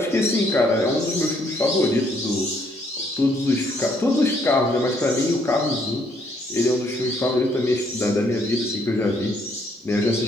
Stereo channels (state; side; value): normal; both; correlation 0.69